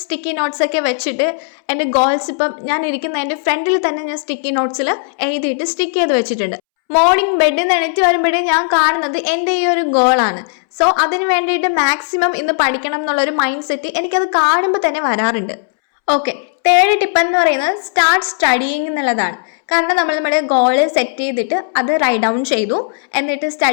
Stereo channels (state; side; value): silent; right; 69 dB below the other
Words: സ്റ്റിക്കി നോട്ട്സ് ഒക്കെ വെച്ചിട്ട് എൻ്റെ ഗോൾസ് ഇപ്പം ഞാൻ ഇരിക്കുന്ന എൻ്റെ ഫ്രണ്ടിൽ തന്നെ ഞാൻ സ്റ്റിക്കി നോട്ട്സിൽ എഴുതിയിട്ട് സ്റ്റിക്ക് ചെയ്ത് വെച്ചിട്ടുണ്ട്. മോർണിംഗ് ബെഡിൽ നിന്ന് എണീറ്റ് വരുമ്പോഴേ ഞാൻ കാണുന്നത് എൻ്റെ ഈ ഒരു ഗോളാണ്. സോ അതിന് വേണ്ടിയിട്ട് മാക്സിമം ഇന്ന് പഠിക്കണം എന്നുള്ളൊരു മൈൻഡ് സെറ്റ് എനിക്കത് കാണുമ്പോൾ തന്നെ വരാറുണ്ട്. ഓക്കെ, തേർഡ് ടിപ്പ് എന്ന് പറയുന്നത് സ്റ്റാർട്ട് സ്റ്റഡിയിങ് എന്നുള്ളതാണ്. കാരണം നമ്മുടെ ഗോള് സെറ്റ് ചെയ്തിട്ട് അത് റൈറ്റ് ഡൗൺ ചെയ്തു, എന്നിട്ട്